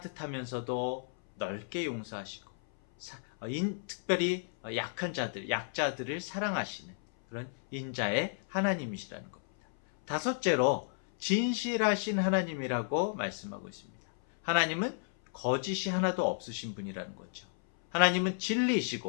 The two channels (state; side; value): silent; right; 56 dB below the other